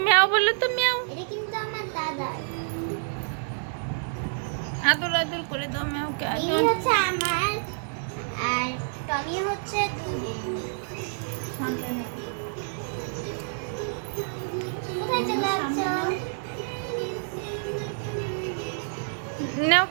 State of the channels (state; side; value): silent; left; digital silence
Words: ম্যাও বললো তো, ম্যাও। এটা কিন্তু আমার দাদার। আদর আদর করে দাও ম্যাওকে, এই আদর। হচ্ছে আমার, আর টমি হচ্ছে কোথায় চলে যাচ্ছ?